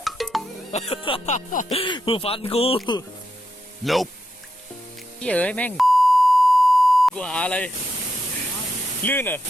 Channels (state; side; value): normal; both; correlation 0.84